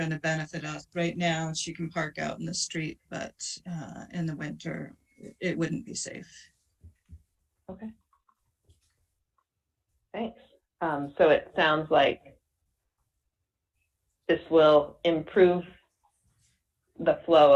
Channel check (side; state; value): both; identical; correlation 1.00